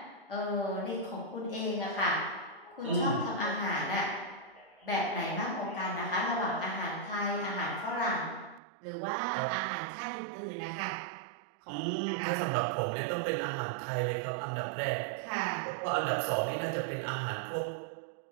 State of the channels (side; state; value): left; drops out; at 8.6 s